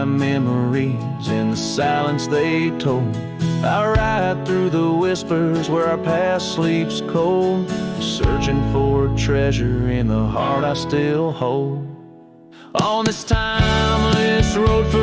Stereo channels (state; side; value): identical; both; correlation 1.00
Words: memories in the silence they told. I ride through the whispers where our past sleeps cold, searching for a treasure in the heart I still hold. On this timeless road